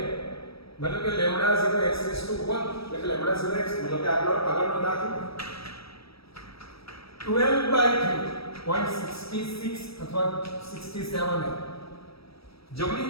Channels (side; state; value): right; late; 0.76 ms